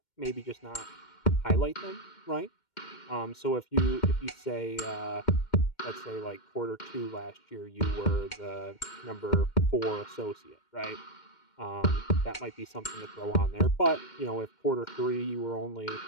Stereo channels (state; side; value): late; right; 2.1 ms